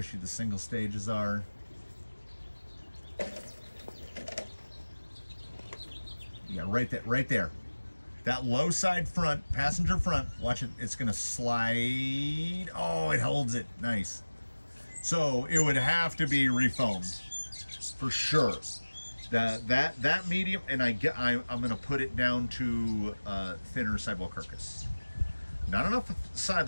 the single stages are. Yeah, right there. That low side front, passenger front, watch it, it's gonna slide. Oh, it holds it, nice. So it would have to be refoamed, for sure. That medium, and I'm going to put it down to thinner sidewall carcass. Not enough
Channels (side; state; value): both; inverted; correlation -1.00